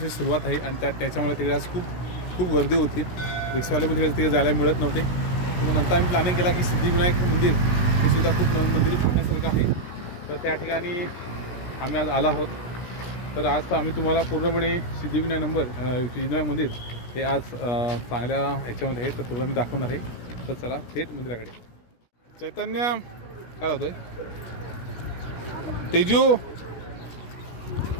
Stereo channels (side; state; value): right; late; 17 ms